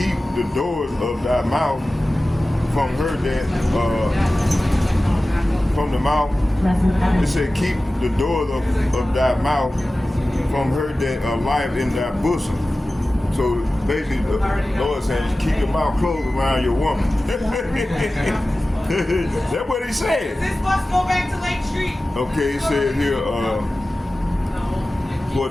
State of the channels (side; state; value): both; normal; correlation 0.96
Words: the doors of thy mouth from her that, from the mouth. It said, keep the doors of thy mouth from her that lieth in thy bosom. So basically, the Lord is saying, keep your mouth closed around your woman. That's what he said. Does this bus go back to Lake Street? Okay, it said here, for